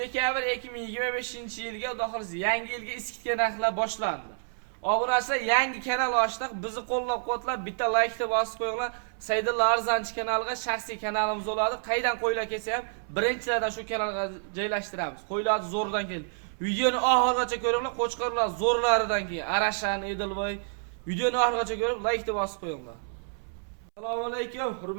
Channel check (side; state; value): left; silent; 59 dB below the other